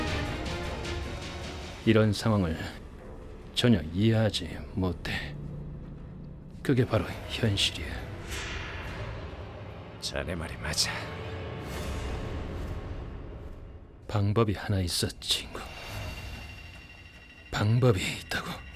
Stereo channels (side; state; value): both; identical; correlation 1.00